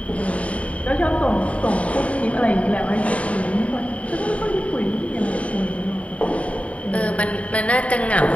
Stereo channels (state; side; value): late; right; 0.065 ms